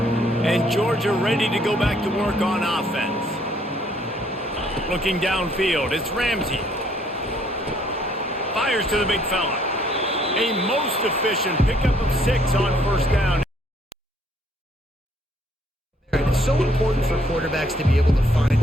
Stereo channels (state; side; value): normal; both; correlation 0.65